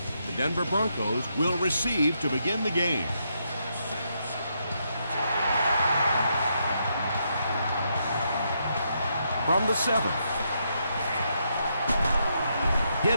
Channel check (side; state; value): both; inverted; correlation -0.79